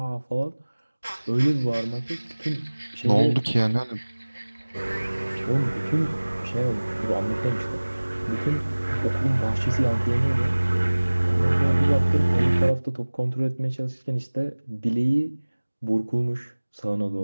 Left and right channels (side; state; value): both; inverted; correlation -1.00